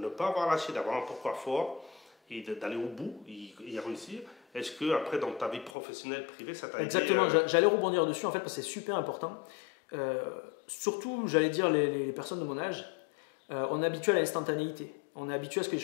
pas avoir lâché, d'avoir un pourquoi fort et d'aller au bout, y réussir, est-ce que après dans ta vie professionnelle, privée, ça t'a aidé? Exactement, j'allais rebondir dessus en fait parce que c'est super important. Surtout, j'allais dire les personnes de mon âge, on est habitué à l'instantanéité, on est habitué à ce que les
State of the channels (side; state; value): right; drops out; at 5.7 s